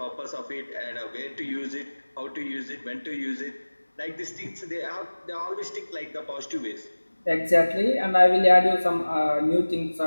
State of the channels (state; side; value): inverted; both; correlation -1.00